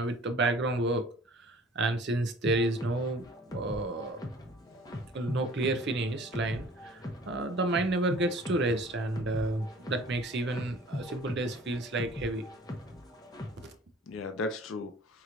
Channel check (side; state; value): both; normal; correlation 0.50